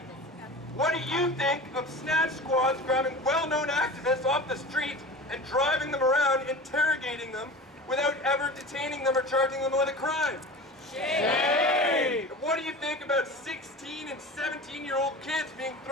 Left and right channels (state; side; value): normal; both; correlation 0.34